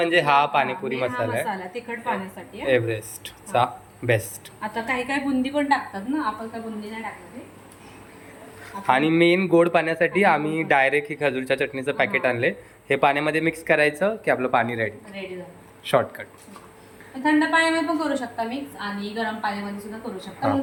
हा पाणीपुरी मसाला आहे तिखट पाण्यासाठी एव्हरेस्टचा बेस्ट. आता काही काही बुंदी पण टाकतात ना, आपण काय बुंदी नाही टाकणार. आणि मेन गोड पाण्यासाठी आम्ही डायरेक्ट ही खजूरच्या चटणीचं पॅकेट आणले. हे पाण्यामध्ये मिक्स करायचं की आपलं पाणी रेडी झालं. शॉर्टकट. थंड पाण्यामध्ये पण करू शकता मिक्स आणि गरम पाण्यामध्ये सुद्धा करू शकता.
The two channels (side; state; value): both; identical; correlation 1.00